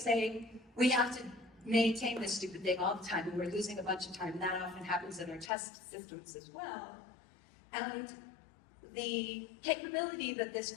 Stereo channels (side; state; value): right; drops out; at 5.5 s